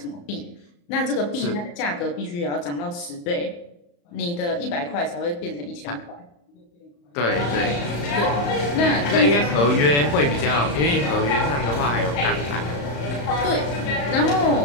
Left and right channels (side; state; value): right; late; 35 ms